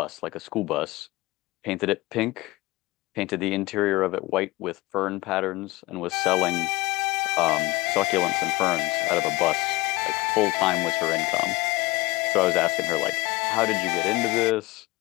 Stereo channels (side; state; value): right; quieter; 21.1 dB